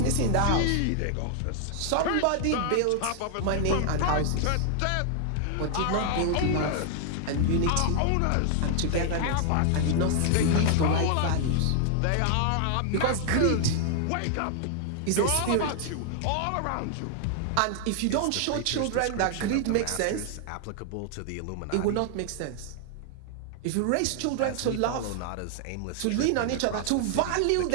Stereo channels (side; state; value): both; different; correlation 0.00